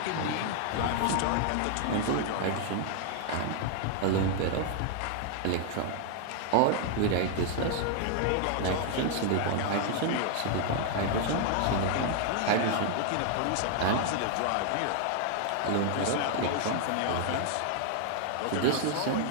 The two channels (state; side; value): different; both; correlation 0.00